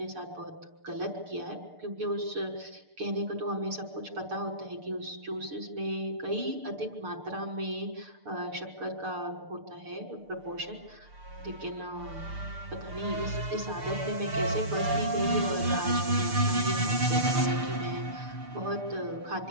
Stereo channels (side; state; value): left; late; 6.7 ms